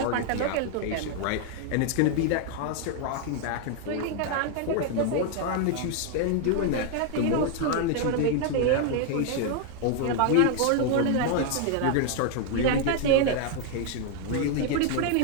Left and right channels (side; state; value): both; different; correlation 0.00